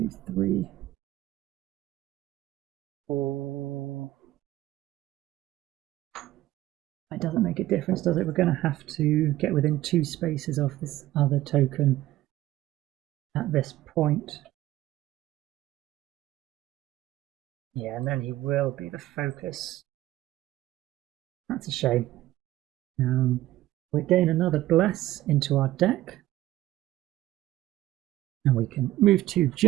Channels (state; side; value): quieter; left; 15.4 dB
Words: 3, 4. It doesn't make a difference, does it? We're going to have to get within 2 spaces of this other token at this point. Yeah, and then he will be the focus. That's a shame. We gain another Bless into our deck. And we can move to